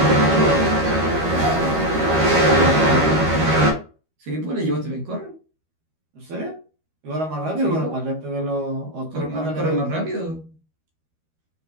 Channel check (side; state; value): left; late; 13 ms